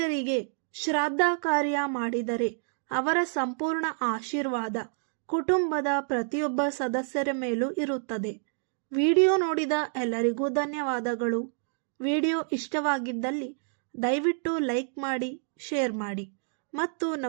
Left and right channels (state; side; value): silent; left; digital silence